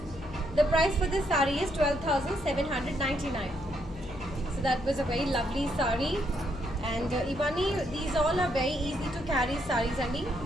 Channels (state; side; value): noise; left; hum, 15 dB below the sound